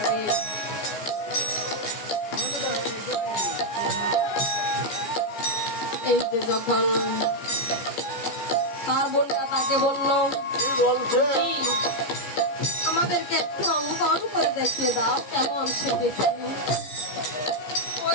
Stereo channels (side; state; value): right; late; 14 ms